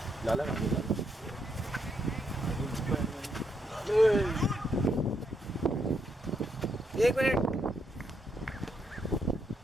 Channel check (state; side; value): normal; both; correlation 0.77